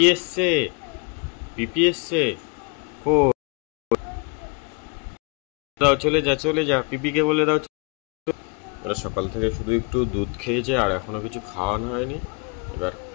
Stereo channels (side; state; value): right; quieter; 33.5 dB